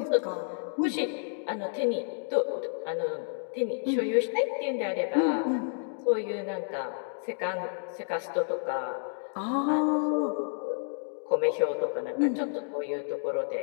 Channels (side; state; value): right; silent; digital silence